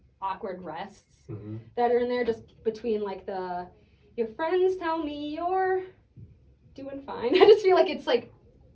awkward rests Mm-hmm. that are in there, just between like your friends tell me you're doing fine. I just feel like it's like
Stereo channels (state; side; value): identical; both; correlation 1.00